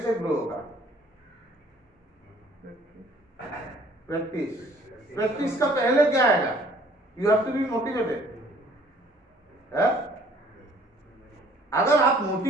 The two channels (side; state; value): both; normal; correlation 0.57